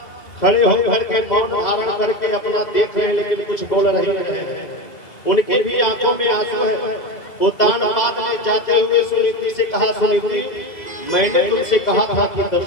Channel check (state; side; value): late; right; 2.0 ms